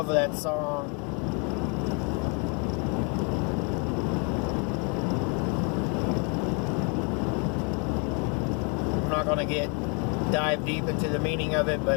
with that song. I'm not going to dive deep into the meaning of it,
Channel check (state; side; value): quieter; right; 33.9 dB